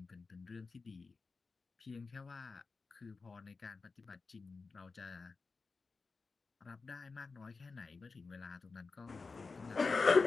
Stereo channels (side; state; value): right; quieter; 4.3 dB